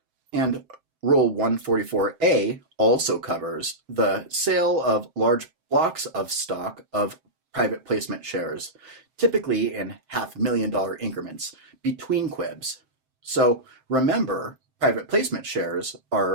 And Rule 144A also covers the sale of large blocks of stock of private placement shares, typically in $500,000 increments between QIBs. So remember, private placement shares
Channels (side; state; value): left; late; 7.7 ms